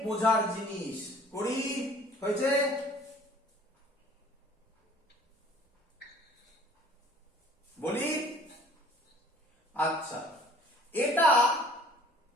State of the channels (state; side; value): normal; both; correlation 0.53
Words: বোঝার জিনিস। করি হয়েছে? বলি আচ্ছা, এটা